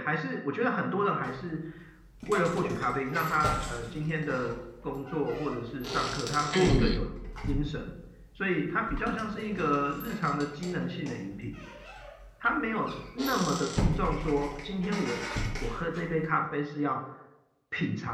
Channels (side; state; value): both; identical; correlation 1.00